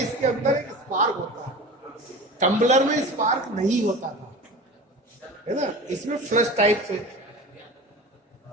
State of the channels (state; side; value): normal; both; correlation 0.35